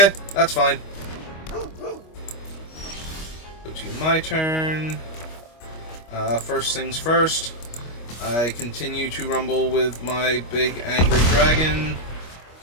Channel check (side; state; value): right; late; 25 ms